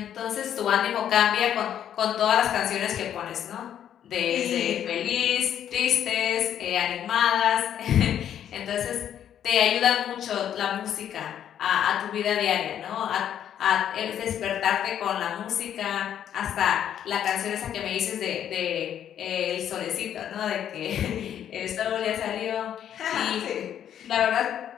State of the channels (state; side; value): quieter; right; 9.9 dB